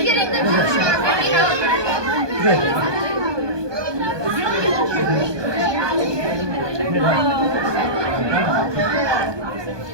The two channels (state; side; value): late; left; 1.2 ms